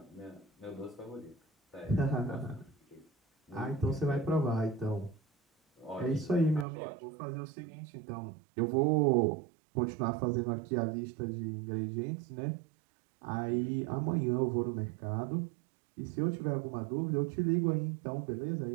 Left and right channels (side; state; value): left; drops out; at 6.7 s